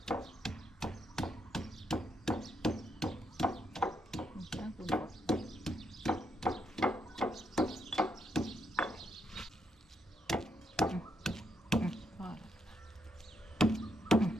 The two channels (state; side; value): normal; both; correlation 0.78